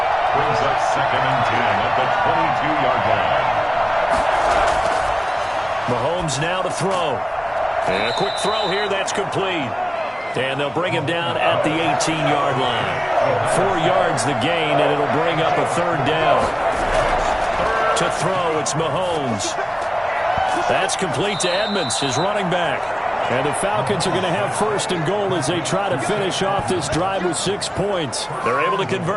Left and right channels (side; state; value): both; identical; correlation 1.00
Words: Brings up 2nd and 10 at the 22-yard line. Mahomes now to throw. And a quick throw here, that's complete. And they'll bring him down at the 18-yard line. 4 yards the gain, and it'll bring up a 3rd down. To throw, it's Mahomes. That's complete to Edmonds, his running back. And the Falcons are going to have 1st and goal as they try to finish off this drive with 6 points. They're able to